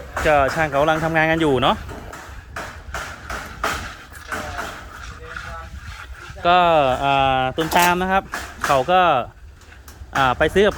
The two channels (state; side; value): identical; both; correlation 1.00